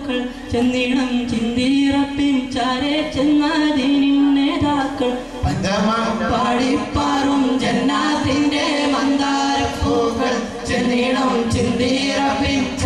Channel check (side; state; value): both; identical; correlation 1.00